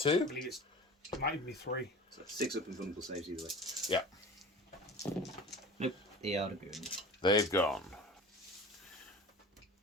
believe it might even be 3. So 6 up and vulnerable saves either way. Yeah. Nope, they are going. They've gone.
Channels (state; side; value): normal; both; correlation 0.36